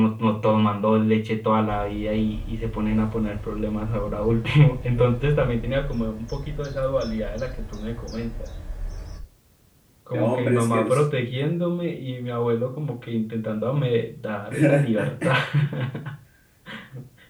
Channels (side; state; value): both; identical; correlation 1.00